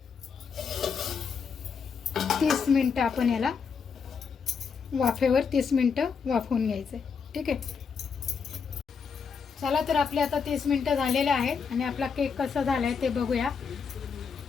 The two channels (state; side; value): quieter; right; 6.0 dB